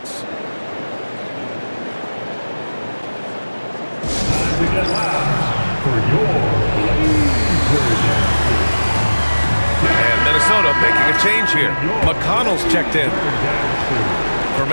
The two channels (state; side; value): inverted; both; correlation -1.00